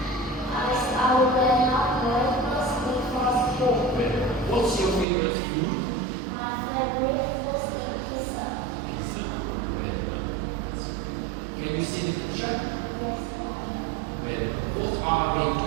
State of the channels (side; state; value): left; drops out; at 5.1 s